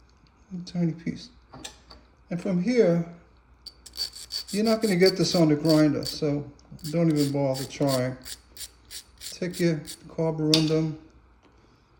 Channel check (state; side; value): identical; both; correlation 1.00